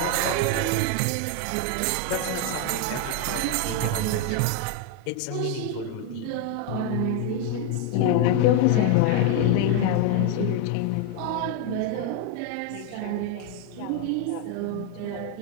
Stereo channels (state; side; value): different; both; correlation 0.01